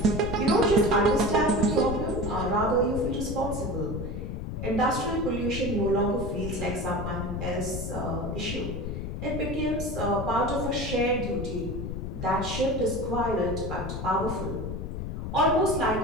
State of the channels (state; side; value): noise; left; rumble, 5 dB below the sound